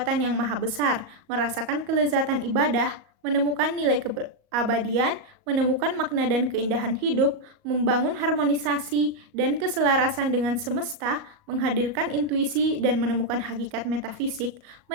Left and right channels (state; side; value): late; left; 38 ms